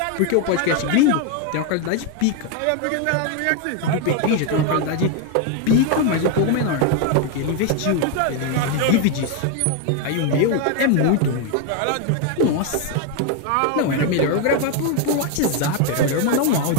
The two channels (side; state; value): both; different; correlation 0.01